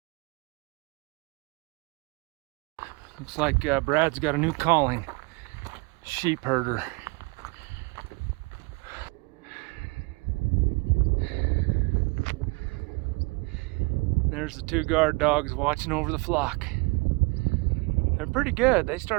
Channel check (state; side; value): quieter; left; 27.7 dB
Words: Looks like Brad's got a new calling, sheep herder. There's the 2 guard dogs watching over the flock. They're pretty good. They